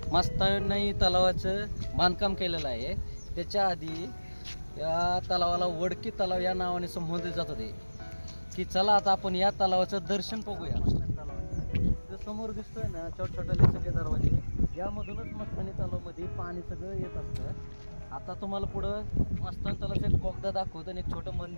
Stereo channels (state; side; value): inverted; both; correlation -1.00